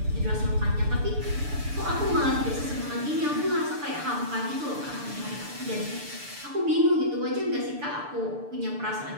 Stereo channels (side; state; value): left; late; 6.8 ms